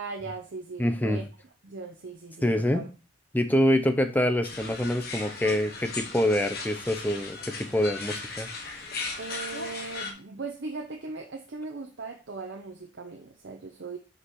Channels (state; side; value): normal; both; correlation 0.74